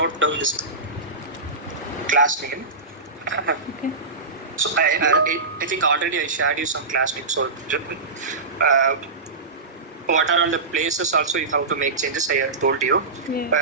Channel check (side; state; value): left; quieter; 3.7 dB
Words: class name. Okay. So I think already I shared you some class name. So what are all the places also you have to make changes? I have told you.